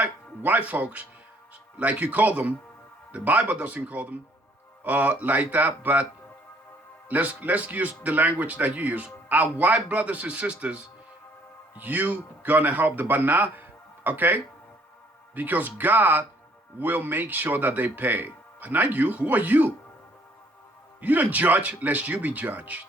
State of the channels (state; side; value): normal; both; correlation 0.63